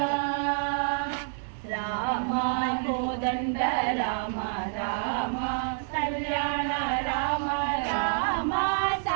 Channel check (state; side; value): silent; left; 59 dB below the other